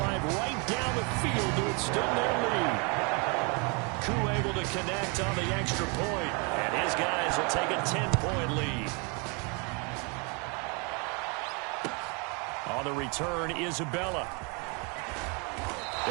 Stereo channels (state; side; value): quieter; left; 32.9 dB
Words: right down the field to extend their lead. Koo able to connect on the extra point, and his guys will take a 10-point lead. On the return, Isabella.